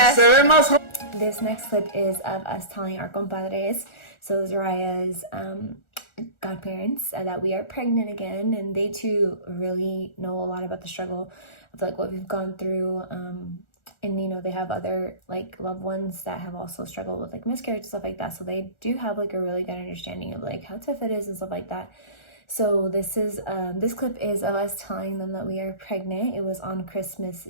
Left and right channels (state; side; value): late; right; 1.4 ms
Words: Se ve más joven. This next clip is of us telling our compadres, so Zariah's godparents, that we are pregnant again, and they too really know a lot about the struggle of like what we've gone through. And you know, they have other like loved ones that have also struggled with like miscarriage and stuff like that, so they do have like a really good understanding of like how tough it is and stuff like that. So this clip is of us telling them that we are pregnant. It was on Christmas